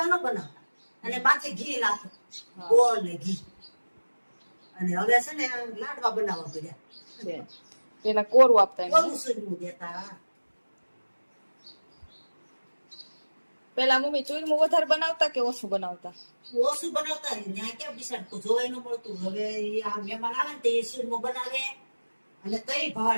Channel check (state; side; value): inverted; both; correlation -1.00